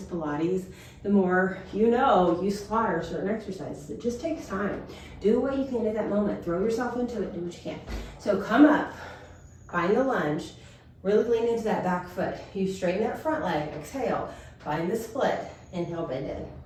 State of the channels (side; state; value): both; identical; correlation 1.00